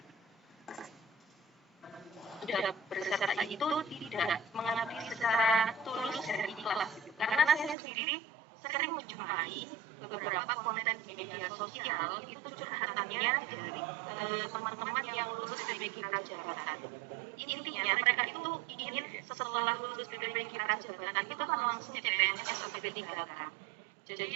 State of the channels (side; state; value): left; drops out; at 7.8 s